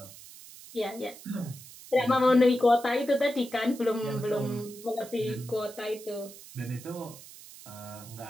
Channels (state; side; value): noise; right; hiss, 17 dB below the sound